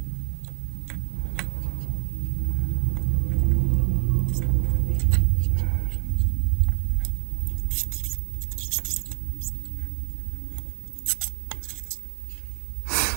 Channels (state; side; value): silent; left; 61 dB below the other